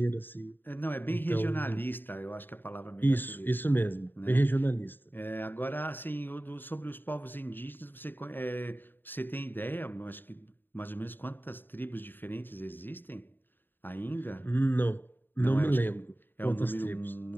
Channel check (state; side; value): late; right; 0.094 ms